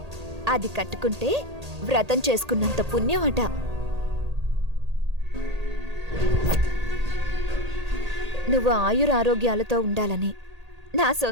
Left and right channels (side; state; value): left; late; 1.8 ms